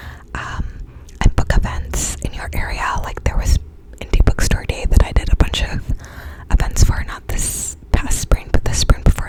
and book events in your area. Like there was Indie Bookstore Day that I did a bunch of events for, not this past spring, but the spring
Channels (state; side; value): identical; both; correlation 1.00